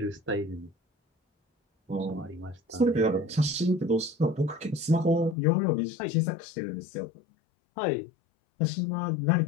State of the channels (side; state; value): right; drops out; at 5.4 s